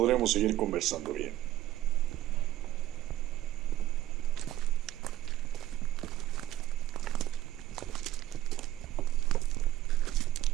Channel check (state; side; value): quieter; left; 13.8 dB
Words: seguir conversando bien.